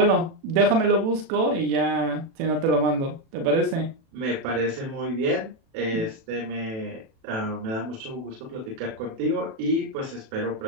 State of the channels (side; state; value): left; late; 36 ms